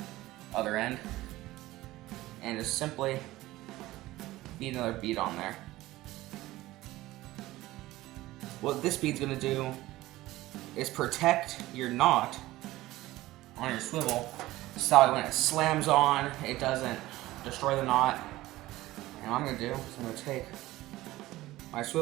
other end and just simply feed another bead on there. What this bead's going to do is protect your knot on your swivel, so that when it slams on, it doesn't destroy the knot. And what I'm going to do is I'm going to take my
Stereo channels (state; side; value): quieter; left; 17.3 dB